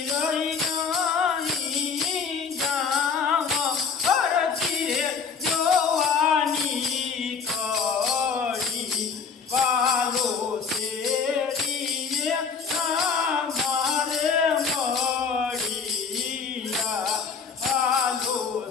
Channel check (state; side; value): quieter; right; 5.5 dB